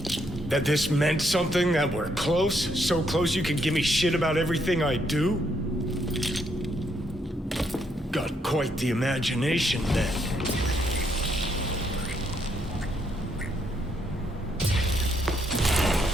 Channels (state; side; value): normal; both; correlation 0.74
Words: that this meant something, that we're close? So close you can give me shit about everything I do? Got quite the imagination then.